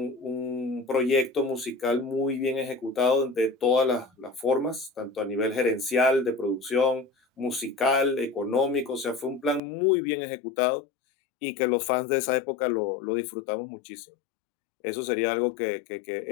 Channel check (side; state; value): right; drops out; at 9.6 s